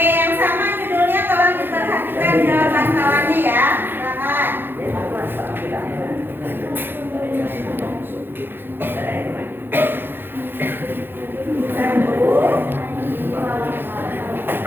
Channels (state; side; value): late; left; 0.10 ms